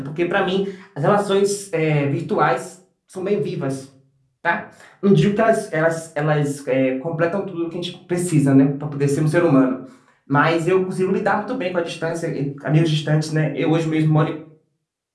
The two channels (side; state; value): both; identical; correlation 1.00